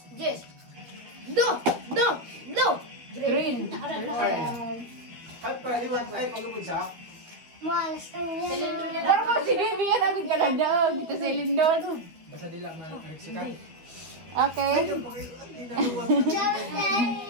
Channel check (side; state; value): left; late; 12 ms